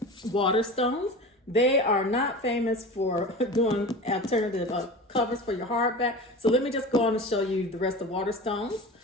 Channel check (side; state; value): both; normal; correlation 0.32